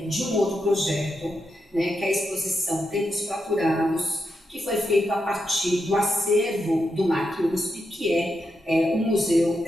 de um outro projeto, né, que é a exposição Tempos Fraturados, que foi feito a partir do acervo do MAC USP, que é o Museu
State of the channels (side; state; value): both; normal; correlation 0.85